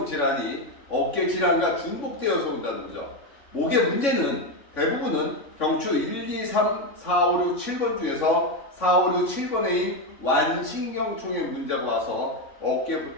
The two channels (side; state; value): right; late; 3.6 ms